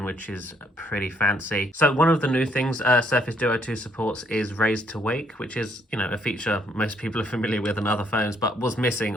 which is pretty fancy. So one of the new things Surface Duo 2 supports is Raise to Wake, which is, you know, a feature most people are familiar with on other phones, but was missing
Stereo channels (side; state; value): both; normal; correlation 0.68